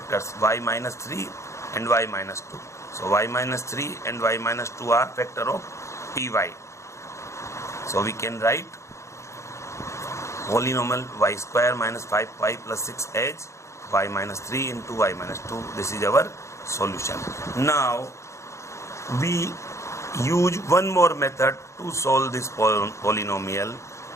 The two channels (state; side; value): late; right; 0.14 ms